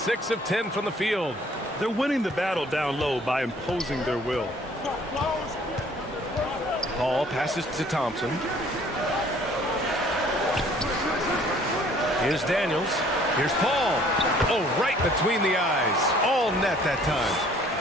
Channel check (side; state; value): both; normal; correlation 0.57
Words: of 10 from the field. They're winning the battle down low by imposing their will. Paul passes to Thompson. Here's Daniels. Here's Paul. Oh, right between the eyes. All net that time.